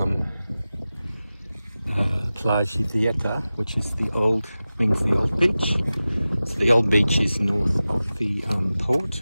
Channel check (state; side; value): inverted; both; correlation -0.95